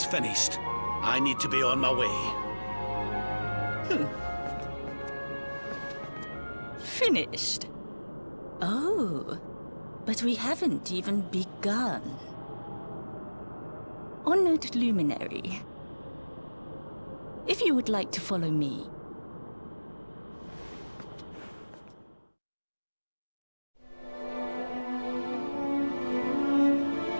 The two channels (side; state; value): both; inverted; correlation -1.00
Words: finished, I need to be on my way. Finished? Oh, but we haven't even begun. Honored Luminary, if you would like to follow me.